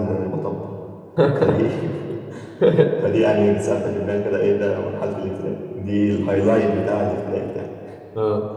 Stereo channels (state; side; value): identical; both; correlation 1.00